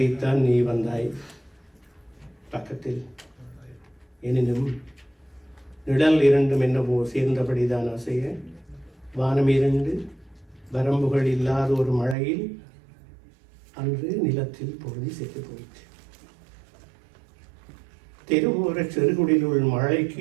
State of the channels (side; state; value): left; drops out; at 12.2 s